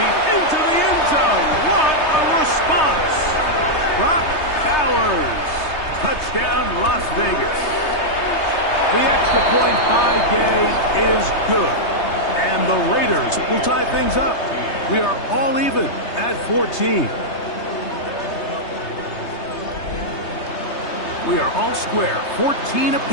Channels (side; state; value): right; late; 3.3 ms